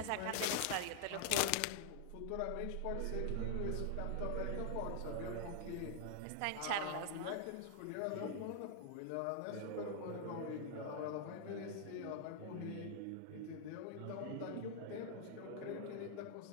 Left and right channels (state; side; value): different; both; correlation 0.00